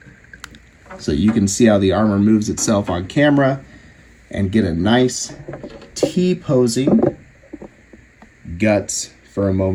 so you can see how the armor moves itself on camera and get a nice T-posing guts for a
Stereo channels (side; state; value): both; identical; correlation 1.00